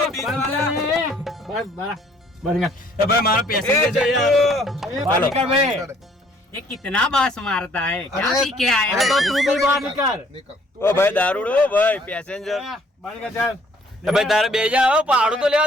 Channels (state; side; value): normal; both; correlation 0.61